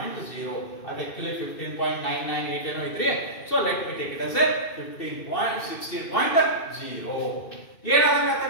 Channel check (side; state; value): right; late; 2.6 ms